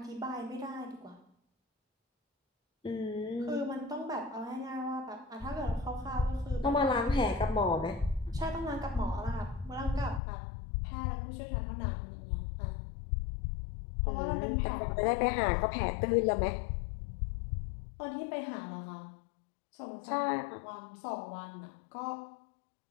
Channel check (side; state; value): right; drops out; at 10.2 s